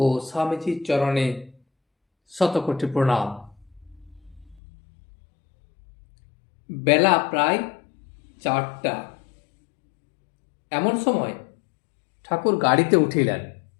স্বামীজির চরণে শতকোটি প্রণাম। বেলা প্রায় 4টা। এমন সময় ঠাকুর গাড়িতে উঠিলেন।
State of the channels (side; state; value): right; drops out; at 4.6 s